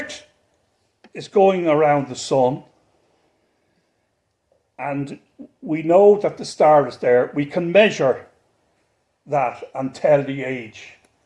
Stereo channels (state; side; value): identical; both; correlation 1.00